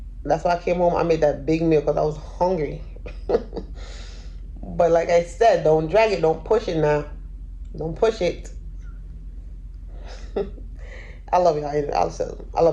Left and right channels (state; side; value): identical; both; correlation 1.00